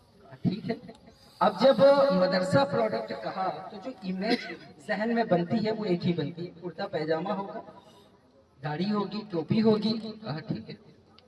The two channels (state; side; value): identical; both; correlation 1.00